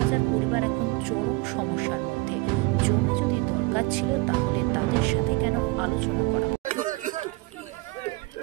পরিবার এখন চরম সমস্যার মধ্যে। জমি যদি দরকার ছিল তাহলে তাদের সাথে কেন আলোচনা করা?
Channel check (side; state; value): left; quieter; 23.0 dB